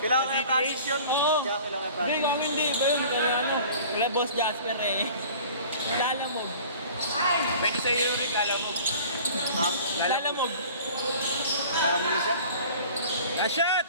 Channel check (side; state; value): both; inverted; correlation -0.45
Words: yung practice yun. Oo. Kailangan yung Hindi, kami hindi. Ba yun? Kaya ano? Wala boss Jasper eh. Lalamog. Pwede sa iyo rin, alam mo. Lalamog. Tara mo na siya. Shot!